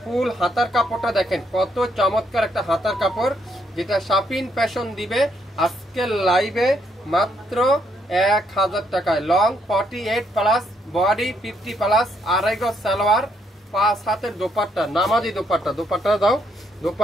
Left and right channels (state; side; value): normal; both; correlation 0.73